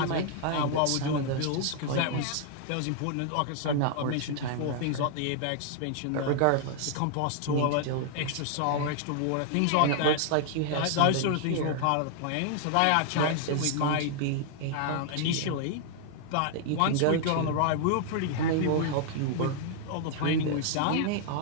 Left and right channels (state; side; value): different; both; correlation 0.00